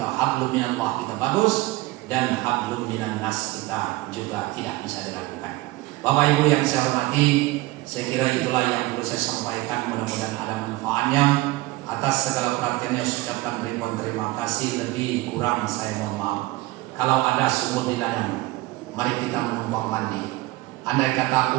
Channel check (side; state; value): left; quieter; 19.8 dB